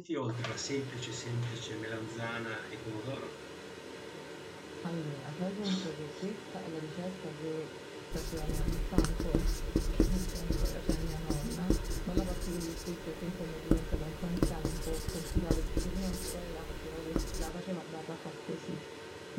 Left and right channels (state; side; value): identical; both; correlation 1.00